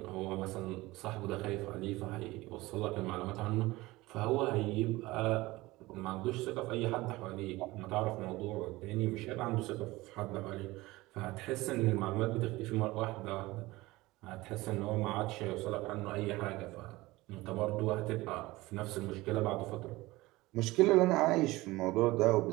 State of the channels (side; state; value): left; quieter; 19.9 dB